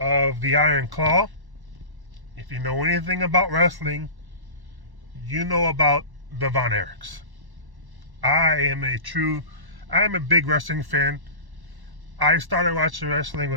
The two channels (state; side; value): late; left; 1.1 ms